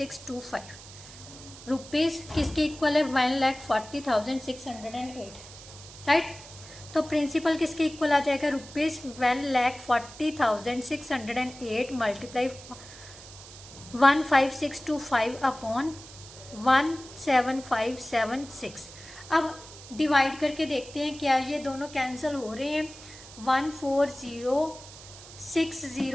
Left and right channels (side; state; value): right; noise; hiss, 17 dB below the sound